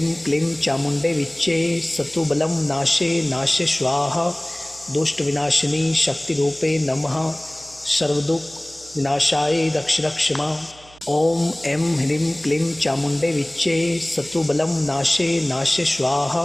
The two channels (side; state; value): right; noise; hum, 25 dB below the sound